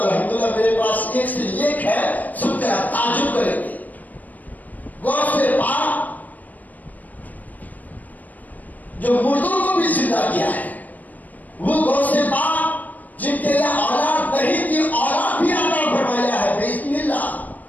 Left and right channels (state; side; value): late; right; 0.080 ms